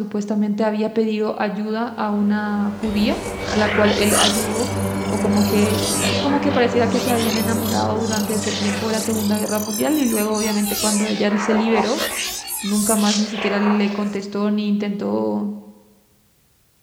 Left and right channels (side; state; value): both; identical; correlation 1.00